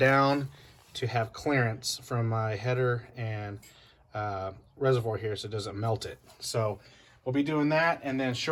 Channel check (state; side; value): identical; both; correlation 1.00